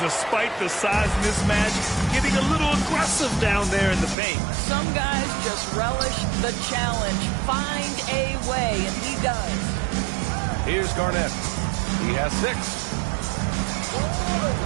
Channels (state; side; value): drops out; left; at 4.2 s